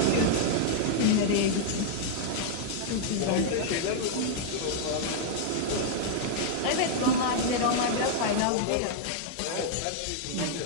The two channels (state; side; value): different; both; correlation -0.01